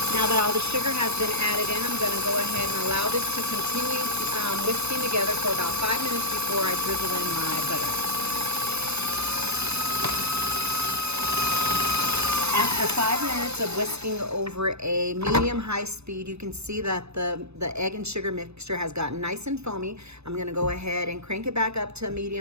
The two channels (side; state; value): left; late; 0.80 ms